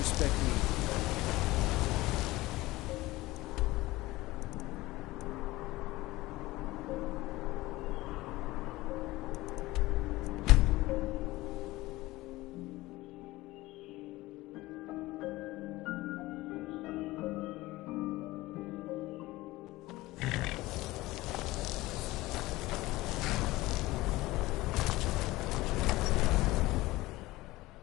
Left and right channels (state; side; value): quieter; right; 19.0 dB